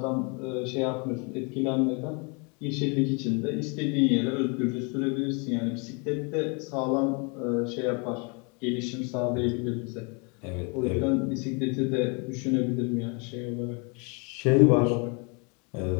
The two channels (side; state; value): right; quieter; 33.4 dB